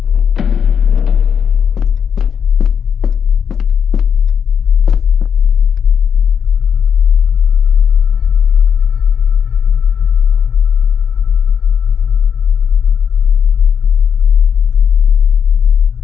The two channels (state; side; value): quieter; right; 7.4 dB